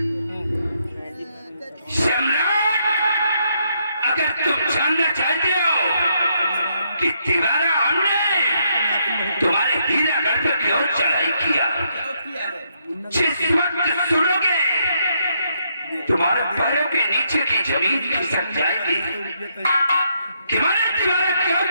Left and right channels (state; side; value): inverted; both; correlation -0.76